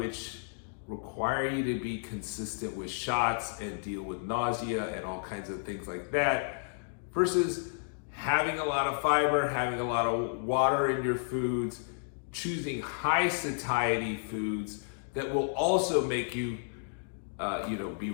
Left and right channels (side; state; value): right; silent; digital silence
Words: require you to be consistent with shots and deal with nausea and all kinds of things like that, versus having a lot of fiber, having a lot of water in your foods, choosing high satiety foods that will also make you, be